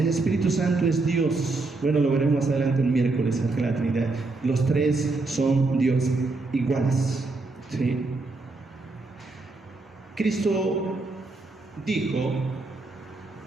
Espíritu Santo es Dios. Bueno, lo veremos más adelante el miércoles en la Trinidad. Los tres son Dios iguales, ¿sí? Cristo dijo:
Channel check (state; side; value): quieter; left; 3.4 dB